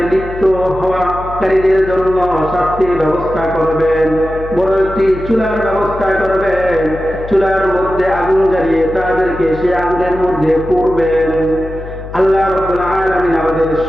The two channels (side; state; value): left; noise; hum, 12 dB below the sound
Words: লিপ্ত হওয়াকারীদের জন্য শাস্তির ব্যবস্থা করবেন। বড় একটি চুলার ব্যবস্থা করবেন, চুলার মধ্যে আগুন জ্বালিয়ে তাদেরকে সে আগুনের মধ্যে পুড়বেন। আল্লাহ রাব্বুল আলামিন আমাদের